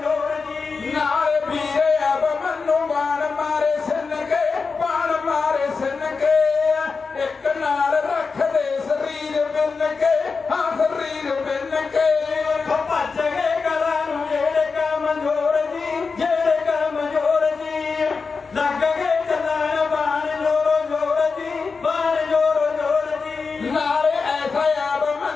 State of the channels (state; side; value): quieter; right; 4.8 dB